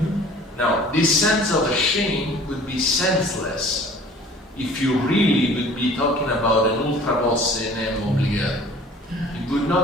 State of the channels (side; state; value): both; normal; correlation 0.49